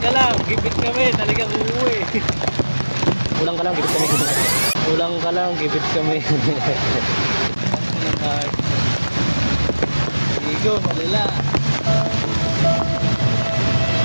lang, gibit kami, talagang uuwi. Ulang ka lang, gibit kami. Ulang ka lang, gibit kami. Igo, malala.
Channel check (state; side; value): inverted; both; correlation -1.00